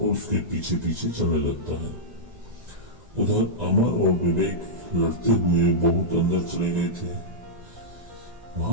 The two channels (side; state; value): left; late; 1.9 ms